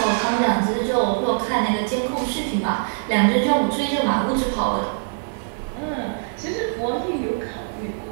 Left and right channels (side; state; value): left; silent; digital silence